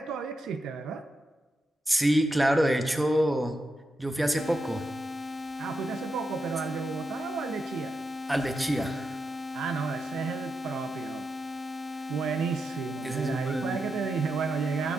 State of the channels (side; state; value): both; normal; correlation 0.86